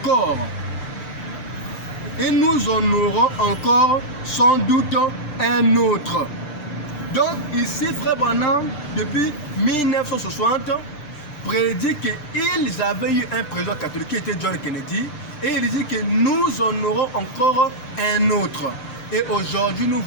Et nous en aurons encore sans doute un autre. Donc ici, Frère Branham, depuis 1960, prédit qu'ils avaient eu un président catholique qui était John Kennedy. Et il dit que nous en aurons encore un autre. Et aujourd'hui, nous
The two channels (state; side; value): late; right; 6.7 ms